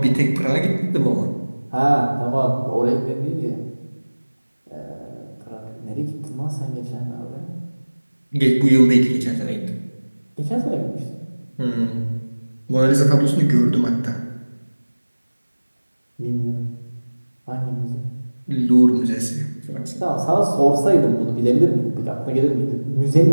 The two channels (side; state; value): both; inverted; correlation -1.00